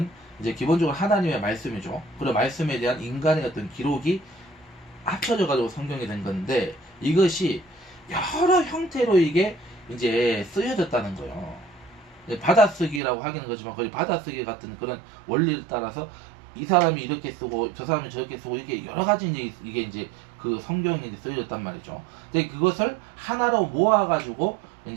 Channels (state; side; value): drops out; left; at 13.0 s